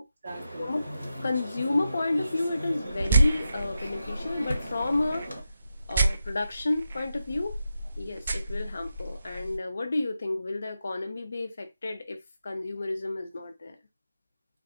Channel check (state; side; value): inverted; both; correlation -0.88